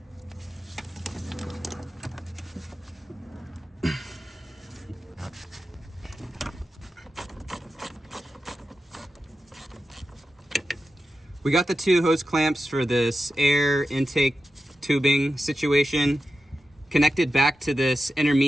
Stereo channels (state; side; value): normal; both; correlation 0.91